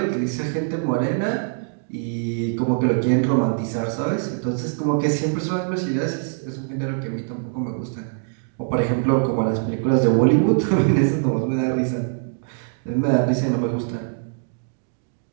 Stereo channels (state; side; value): silent; left; 63 dB below the other